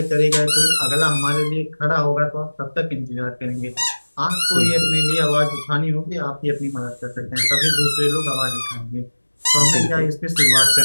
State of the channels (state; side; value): inverted; both; correlation -1.00